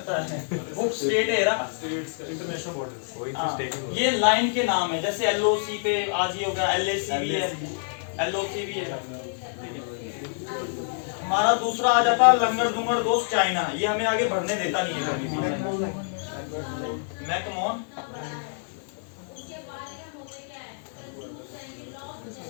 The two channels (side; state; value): right; silent; 60 dB below the other